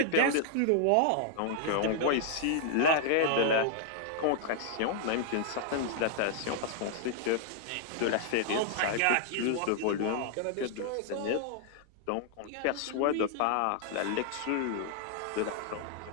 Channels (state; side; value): different; both; correlation 0.00